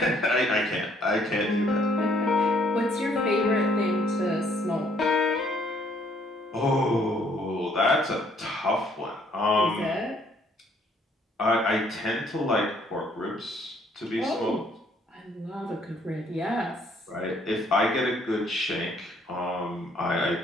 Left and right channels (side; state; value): both; normal; correlation 0.64